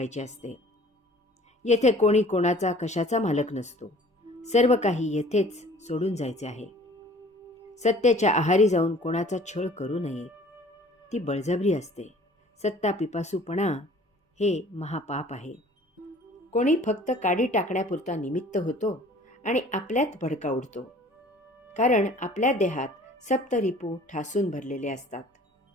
असते. येथे कोणी कोणाचा कशाचा मालक नसतो. सर्व काही येथेच सोडून जायचे आहे. सत्तेच्या आहारी जाऊन कोणाचा छळ करू नये. ती बळजबरी असते. सत्ता पिपासूपणा हे महापाप आहे. कोणी फक्त काडी टाकण्यापुरता निमित्त होतो आणि आपल्यात भडका उडतो. कारण आपल्या देहात सप्तरिपू ठासून भरलेले असतात.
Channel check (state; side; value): normal; both; correlation 0.50